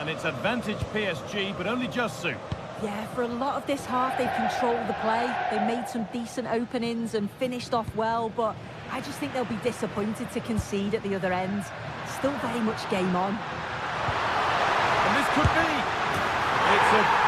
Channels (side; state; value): both; identical; correlation 1.00